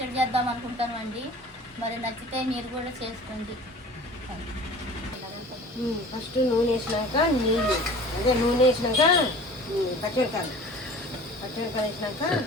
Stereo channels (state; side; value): normal; both; correlation 0.43